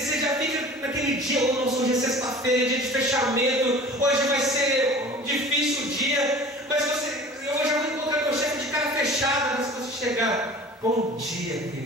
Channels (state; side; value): normal; both; correlation 0.42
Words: já fica naquele dia: hoje é sexta-feira, dia de fechamento, hoje vai ser difícil o dia, mas eu já vou encontrar meu chefe de cara fechada. Mas se você chegar: bom dia,